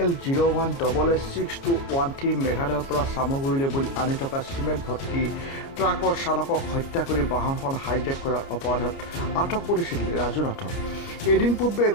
মেঘালয়ৰ পৰা চামগুৰিলৈ বুলি আনি থকা চিমেণ্ট ভৰ্তি ট্ৰাকৰ চালকক হত্যা কৰি বাহনখন হাইজেক কৰাৰ অপৰাধত আটক কৰিছিল ৰাজু নাথক। এদিন পূৰ্বে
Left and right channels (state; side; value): late; right; 29 ms